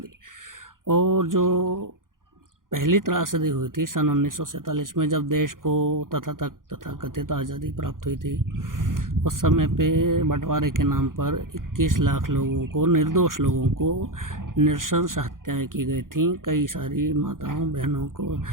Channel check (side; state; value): left; late; 0.90 ms